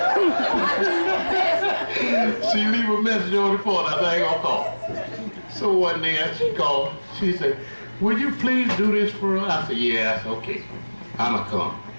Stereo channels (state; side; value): inverted; both; correlation -1.00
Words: She leave a message on the phone, I said, I ain't gonna call. So one day, she called, she said, would you please do this for us? I said, yeah, that's okay. I'ma come.